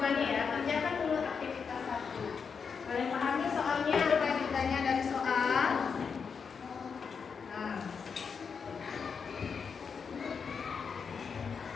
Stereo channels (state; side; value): quieter; right; 6.0 dB